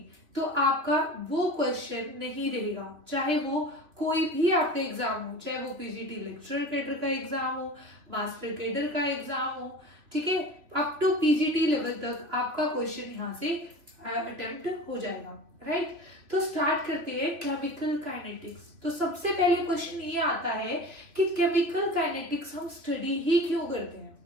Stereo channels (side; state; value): left; late; 3.2 ms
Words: तो आपका वो क्वेश्चन नहीं रहेगा, चाहे वो कोई भी आपका एग्जाम हो, चाहे वो पीजीटी लेक्चरर कैडर का एग्जाम हो, मास्टर कैडर का एग्जाम हो, ठीक है, अप टू पीजीटी लेवल तक आपका क्वेश्चन यहाँ से अटेम्प्ट हो जाएगा। राइट। तो स्टार्ट करते हैं केमिकल काइनेटिक्स। तो सबसे पहले क्वेश्चन ये आता है कि केमिकल काइनेटिक्स हम स्टडी ही क्यों करते हैं,